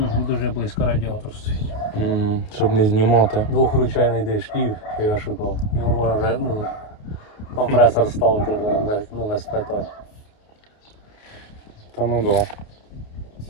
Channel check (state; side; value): late; right; 28 ms